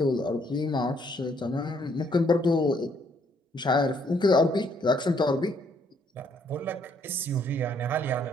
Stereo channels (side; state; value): both; normal; correlation 0.68